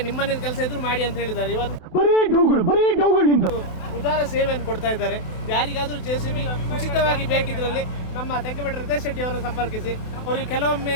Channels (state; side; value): late; right; 28 ms